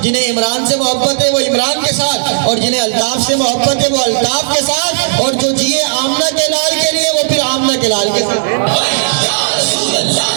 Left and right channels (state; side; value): silent; left; digital silence